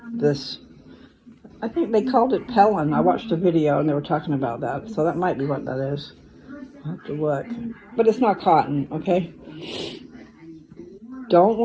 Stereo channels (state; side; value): identical; both; correlation 1.00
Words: this, I think they called it Pellin. I watched a video and they were talking about that, so that might be what that is. I'll have to look. But it's not cotton, okay? Don't